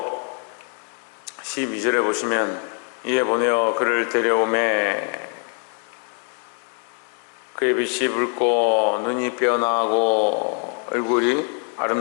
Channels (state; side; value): quieter; right; 37.6 dB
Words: 12절에 보시면 이에 보내어 그를 데려오매 그의 빛이 붉고 눈이 빼어나고 얼굴이